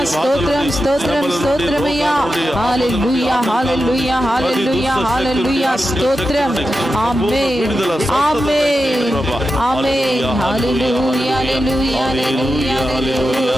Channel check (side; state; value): both; normal; correlation 0.90